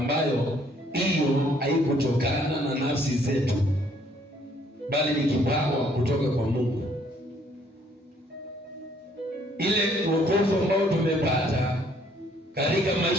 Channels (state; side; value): normal; both; correlation 0.64